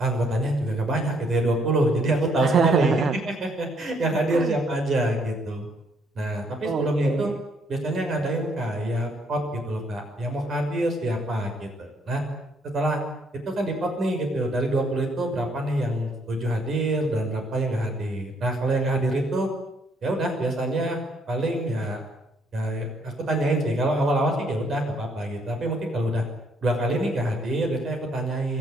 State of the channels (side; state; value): both; normal; correlation 0.69